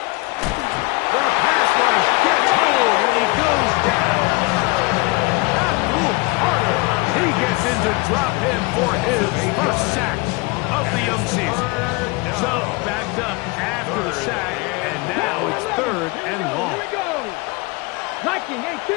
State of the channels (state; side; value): quieter; right; 25.9 dB